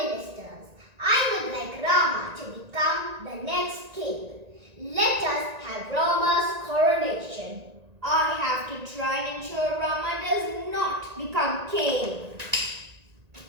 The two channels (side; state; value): left; late; 1.9 ms